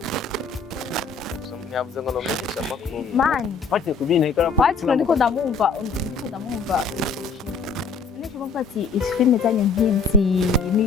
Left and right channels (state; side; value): quieter; right; 4.7 dB